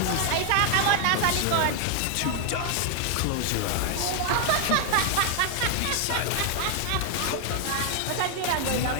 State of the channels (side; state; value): both; different; correlation 0.00